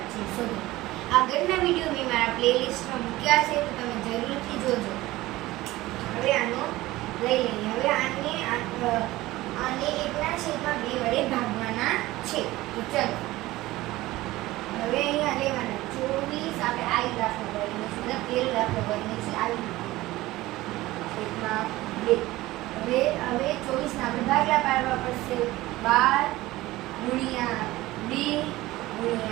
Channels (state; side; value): quieter; left; 17.9 dB